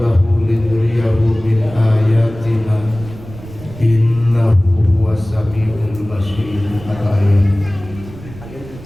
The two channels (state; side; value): noise; right; rumble, 16 dB below the sound